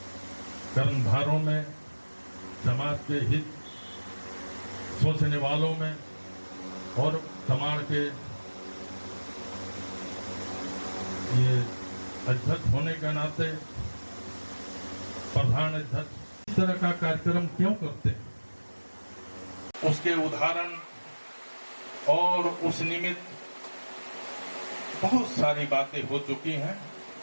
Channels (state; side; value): inverted; both; correlation -1.00